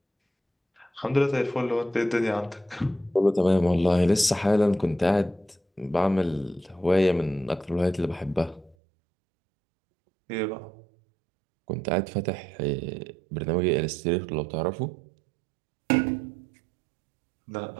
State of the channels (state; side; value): drops out; left; at 8.8 s